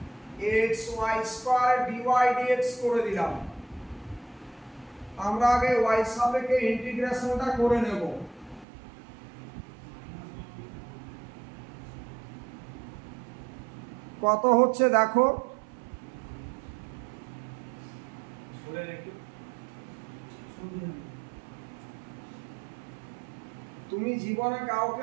x y square dy dx করে দিলাম আমরা আগে y সাপেক্ষে ইন্টিগ্রেশনটা করে নেব কত হচ্ছে দেখো তুমি জীবনে কাউকে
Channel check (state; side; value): drops out; left; at 8.7 s